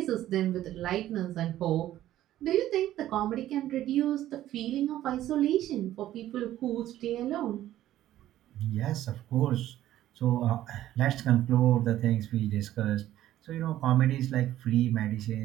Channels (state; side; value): quieter; left; 13.3 dB